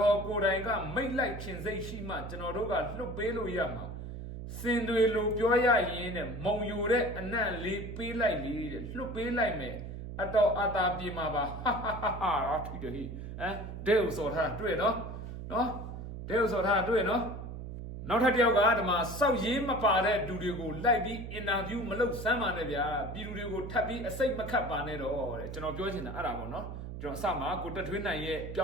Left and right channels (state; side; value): noise; right; hum, 8 dB below the sound